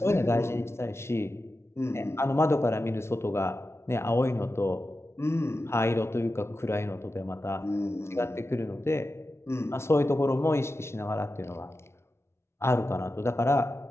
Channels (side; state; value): right; late; 0.13 ms